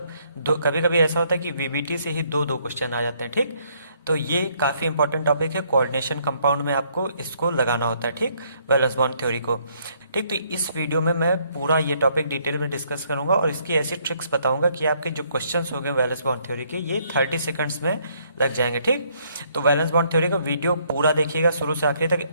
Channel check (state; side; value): inverted; both; correlation -0.68